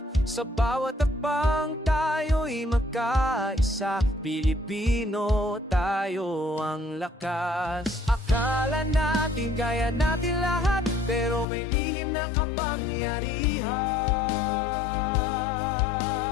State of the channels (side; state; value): right; drops out; at 11.5 s